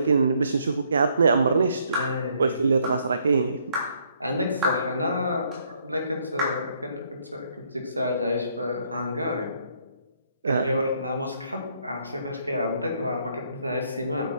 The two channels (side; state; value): both; inverted; correlation -0.69